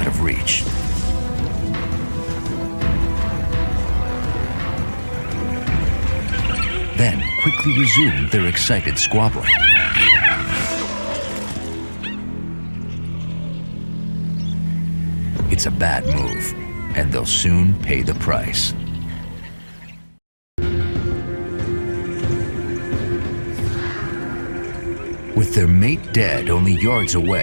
of reach. Then quickly resume their excited squabbling. It's a bad move, and they'll soon pay the price. With their mate dead only yards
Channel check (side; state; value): both; inverted; correlation -1.00